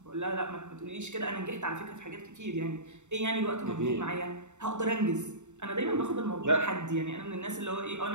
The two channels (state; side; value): late; left; 0.84 ms